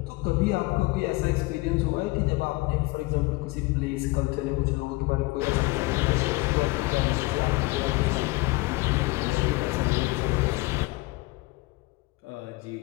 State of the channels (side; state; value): right; quieter; 23.0 dB